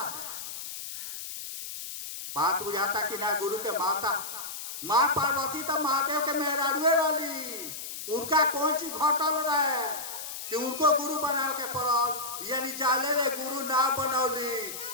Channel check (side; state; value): left; noise; hiss, 8 dB below the sound